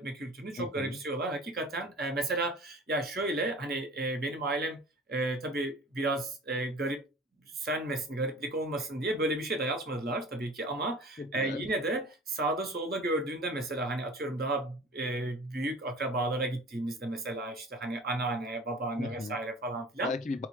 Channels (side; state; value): both; normal; correlation 0.42